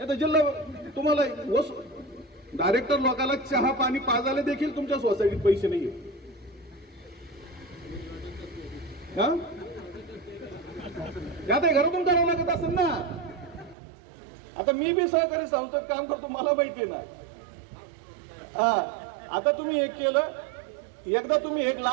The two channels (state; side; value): drops out; left; at 13.8 s